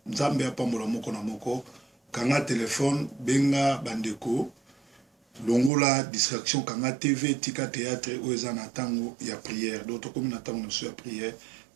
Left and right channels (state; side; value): drops out; left; at 5.7 s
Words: nzambe apambola moko na moko. Kanga téléphone, benga bandeko. Longola distraction kanga TV, tika théâtre oeza na tango ya prière. Donc comme na tango na prière,